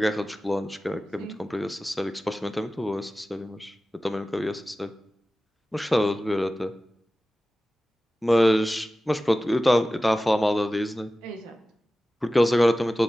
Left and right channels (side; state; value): both; normal; correlation 0.96